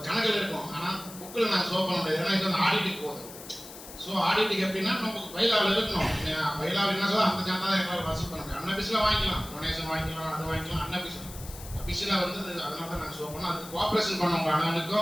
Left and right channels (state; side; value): noise; left; hiss, 15 dB below the sound